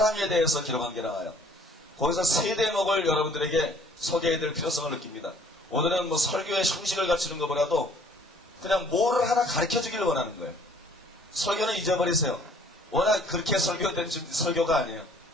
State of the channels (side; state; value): both; normal; correlation 0.57